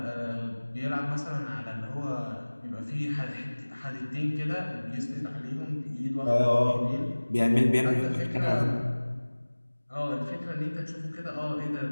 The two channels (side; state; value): both; inverted; correlation -1.00